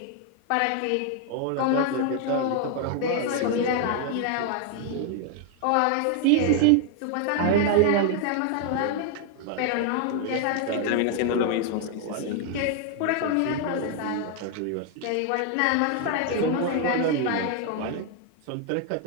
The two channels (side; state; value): both; different; correlation 0.00